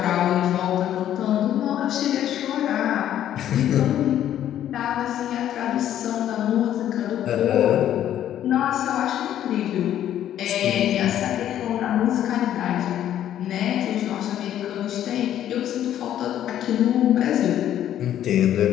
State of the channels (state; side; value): quieter; right; 11.2 dB